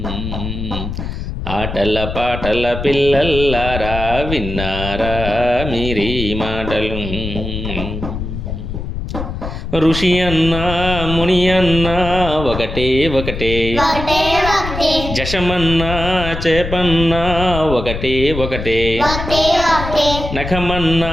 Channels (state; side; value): noise; left; rumble, 6 dB below the sound